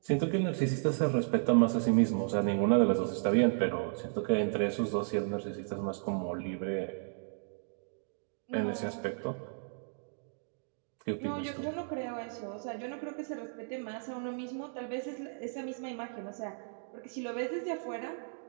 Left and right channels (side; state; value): left; silent; digital silence